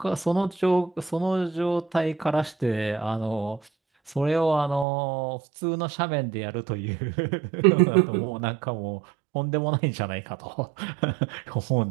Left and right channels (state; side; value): drops out; left; at 4.9 s